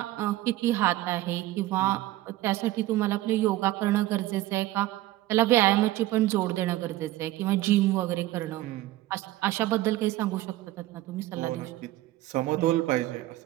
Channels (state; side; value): quieter; left; 16.2 dB